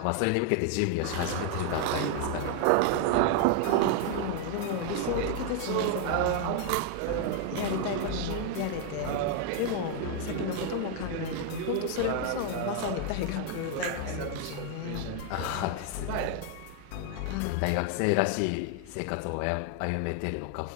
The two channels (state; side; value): different; both; correlation 0.00